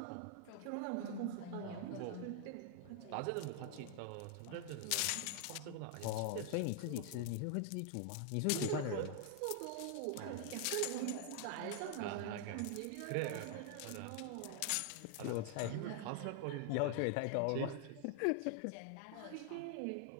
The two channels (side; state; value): both; different; correlation 0.00